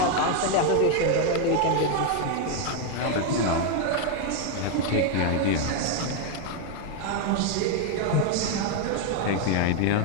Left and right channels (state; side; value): different; both; correlation 0.01